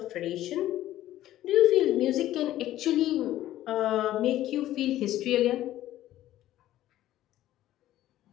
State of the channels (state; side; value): quieter; right; 13.9 dB